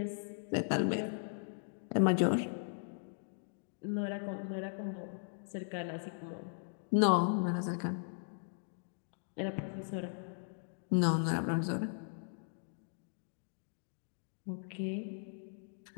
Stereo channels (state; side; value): silent; right; digital silence